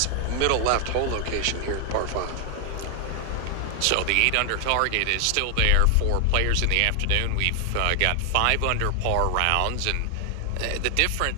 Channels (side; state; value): both; different; correlation 0.00